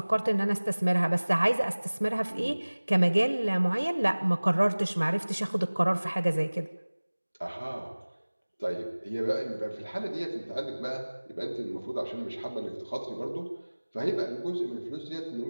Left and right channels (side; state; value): both; inverted; correlation -1.00